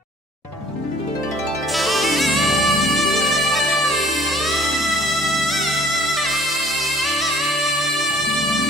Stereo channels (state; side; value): normal; both; correlation 0.55